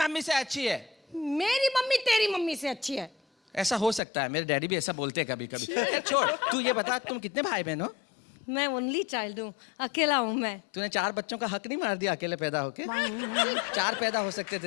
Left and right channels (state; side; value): drops out; right; at 4.0 s